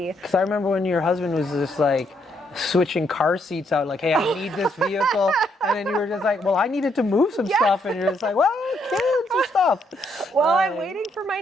Because I remember when your husband was just like switching car seats out, like, hey, I need this vehicle. And then you were just like, well, I needed to move some stuff. And you're just like, well, kids and stuff. Well, I'm waiting for my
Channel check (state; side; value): normal; both; correlation 0.74